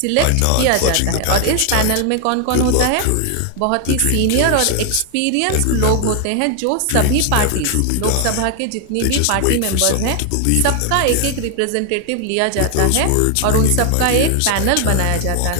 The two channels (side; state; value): both; different; correlation 0.00